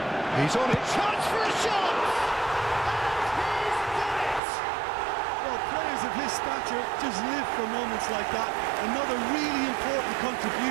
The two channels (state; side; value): drops out; left; at 4.4 s